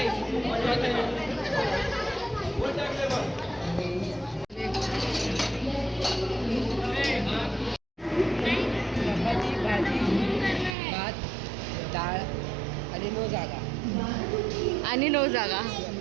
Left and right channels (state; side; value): drops out; left; at 10.8 s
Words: भात, डाळ आणि 9 जागा. आणि 9 जागा.